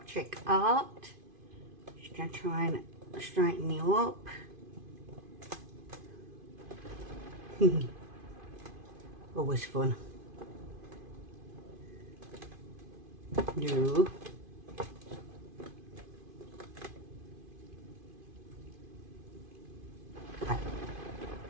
Trick Art. Just going to try and straighten you up. Always fun. No. Okay,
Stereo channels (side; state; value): left; late; 2.5 ms